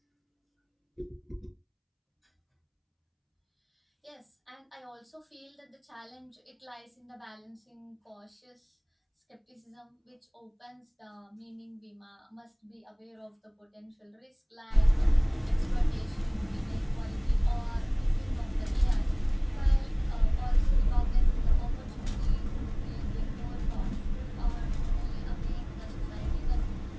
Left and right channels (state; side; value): identical; both; correlation 1.00